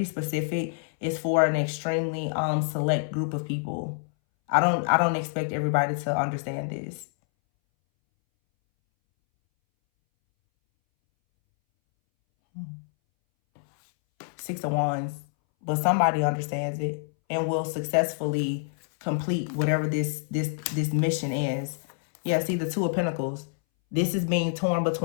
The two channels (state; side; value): silent; right; 60 dB below the other